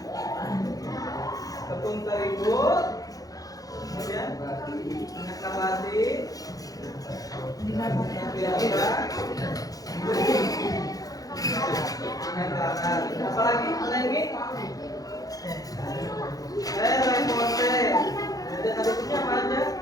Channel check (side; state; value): right; late; 0.17 ms